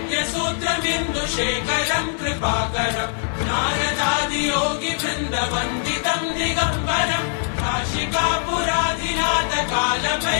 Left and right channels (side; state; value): right; silent; 60 dB below the other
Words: कृपाकरम् नारदादियोगि वृन्दवन्दितम् दिगम्बरम् काशिकापुराधिनाथ